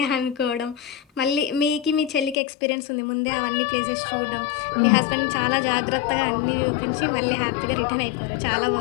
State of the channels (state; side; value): drops out; right; at 2.4 s